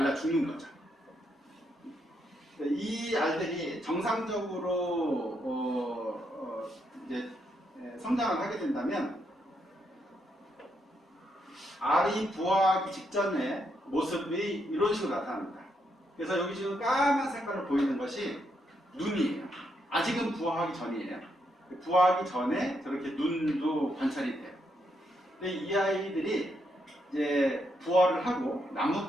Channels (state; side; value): normal; both; correlation 0.79